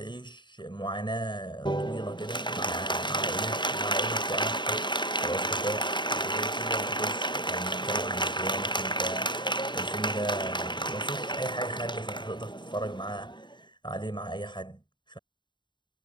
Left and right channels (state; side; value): late; right; 0.22 ms